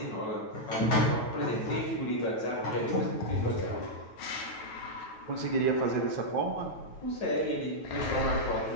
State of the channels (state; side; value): late; right; 9.2 ms